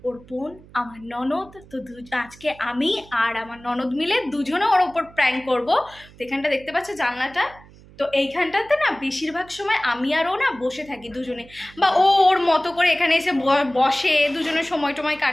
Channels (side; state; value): right; noise; hum, 23 dB below the sound